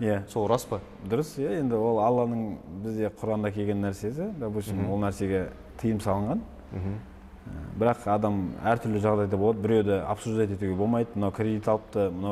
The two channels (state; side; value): identical; both; correlation 1.00